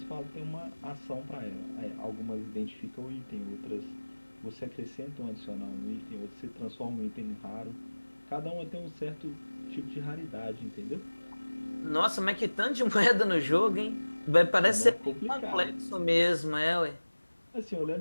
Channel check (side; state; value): both; inverted; correlation -1.00